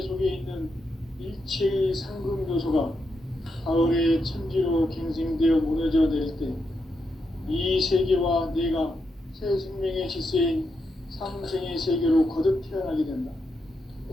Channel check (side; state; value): both; normal; correlation 0.83